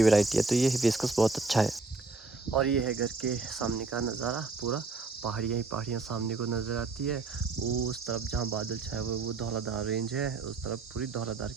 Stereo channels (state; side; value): quieter; left; 3.8 dB